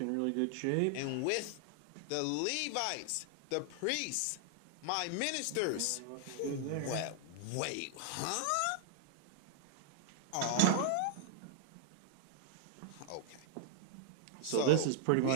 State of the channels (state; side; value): different; both; correlation 0.00